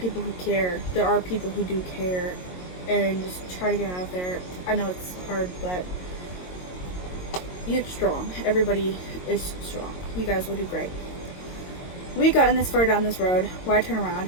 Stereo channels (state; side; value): late; right; 22 ms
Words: who care. There are people who do care, and just try to get out there. I know it's hard, but you're strong. Everybody is strong. You guys will do great. We've gotten this far down this road. Why turn around?